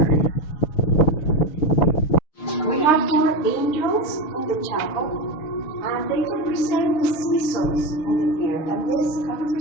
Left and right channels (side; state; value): right; late; 6.5 ms